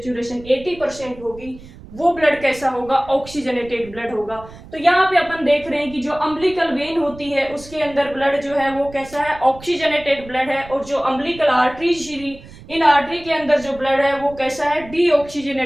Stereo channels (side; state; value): right; noise; rumble, 18 dB below the sound